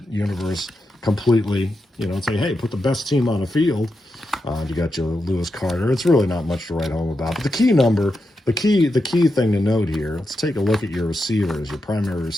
universe completely, and say, hey, put the best team on the field. You got your Lewis Carter. It's really not much to write home about. But the key thing to note here, let's take a look at your receivers, your primary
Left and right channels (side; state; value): both; normal; correlation 0.87